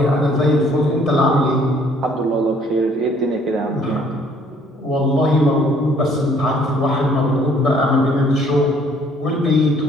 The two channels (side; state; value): both; normal; correlation 0.61